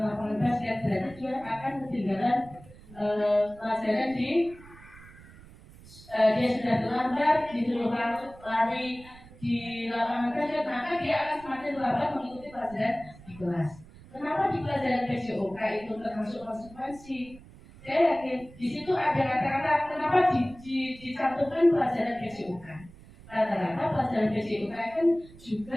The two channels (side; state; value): right; noise; rumble, 21 dB below the sound